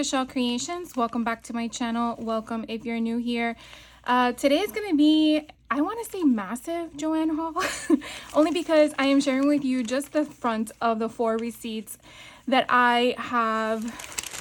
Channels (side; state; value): both; identical; correlation 1.00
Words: Creations. Welcome back to my channel. Welcome if you're new here. Today is going to be, I want to say massive Joann haul, only because I am sharing with you just the front of the 4 receipts that I have,